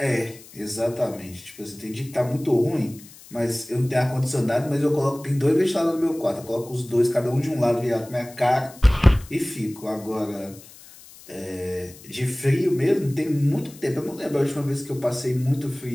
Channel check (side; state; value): left; noise; hiss, 21 dB below the sound